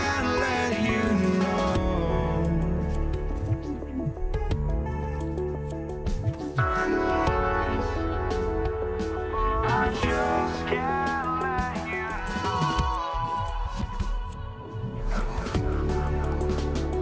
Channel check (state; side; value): identical; both; correlation 1.00